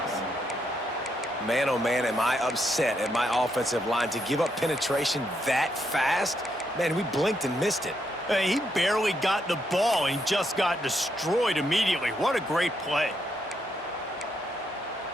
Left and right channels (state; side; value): normal; both; correlation 0.78